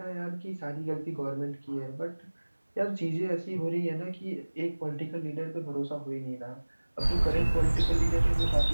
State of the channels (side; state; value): both; inverted; correlation -1.00